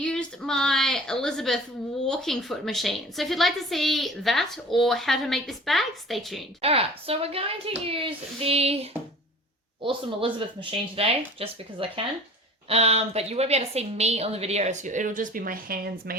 my Elizabeth walking foot machine. So if you'd like to see that or how to make this bag, stay tuned. Alright, so we're going to use the awesome Elizabeth machine today, just because I can. But you won't be able to see me on the video, so it'll just be my hands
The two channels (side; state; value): both; normal; correlation 0.43